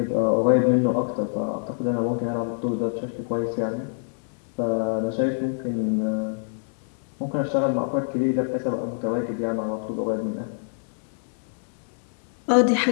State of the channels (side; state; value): right; silent; digital silence